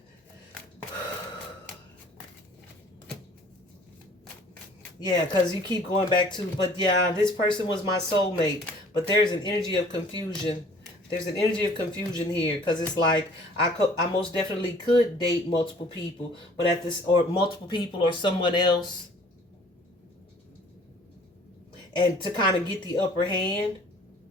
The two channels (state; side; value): normal; both; correlation 0.53